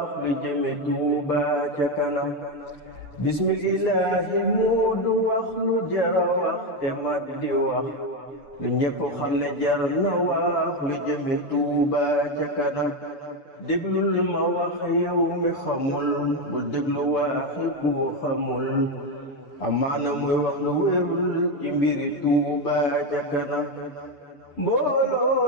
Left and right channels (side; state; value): right; late; 6.9 ms